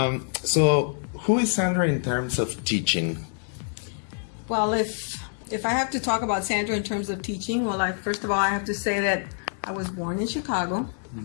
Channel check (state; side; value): silent; right; 61 dB below the other